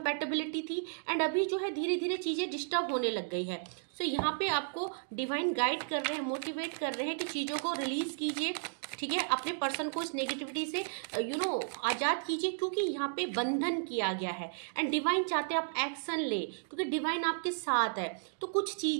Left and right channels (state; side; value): silent; left; digital silence